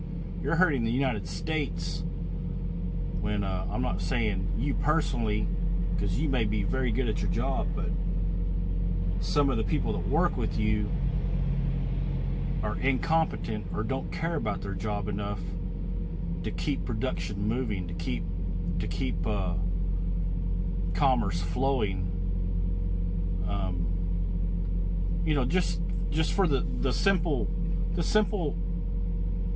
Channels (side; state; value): both; identical; correlation 1.00